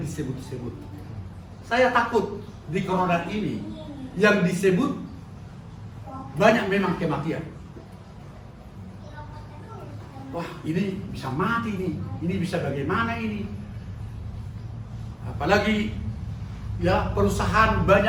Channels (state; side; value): identical; both; correlation 1.00